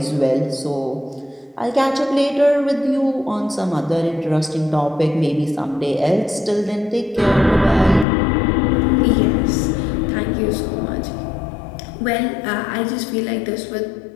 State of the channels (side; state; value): right; drops out; at 8.1 s